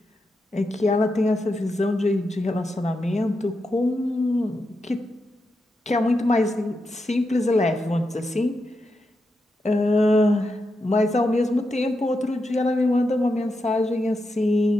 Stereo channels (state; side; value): normal; both; correlation 0.86